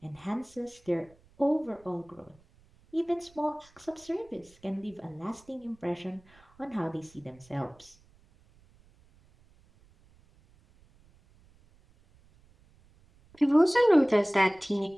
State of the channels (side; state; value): right; noise; rumble, 29 dB below the sound